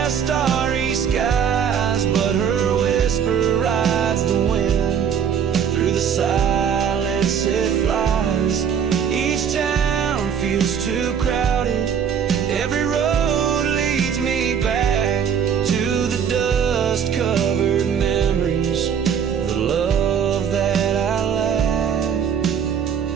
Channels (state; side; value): quieter; left; 7.7 dB